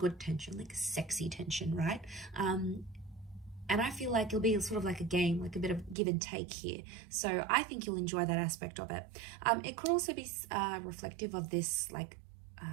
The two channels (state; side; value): drops out; left; at 6.0 s